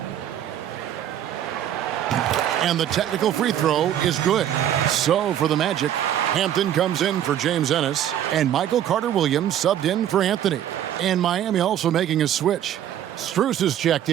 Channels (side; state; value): left; quieter; 10.8 dB